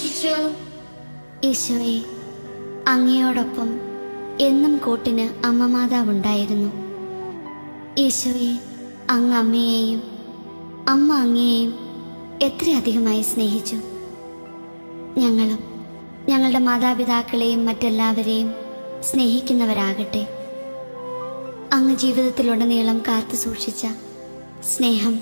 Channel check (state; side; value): inverted; both; correlation -1.00